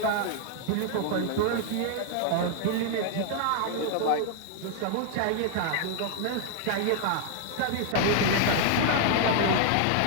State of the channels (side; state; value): both; different; correlation 0.00